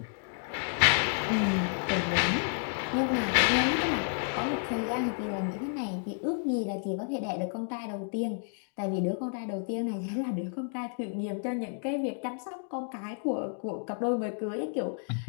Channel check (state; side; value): silent; right; 57 dB below the other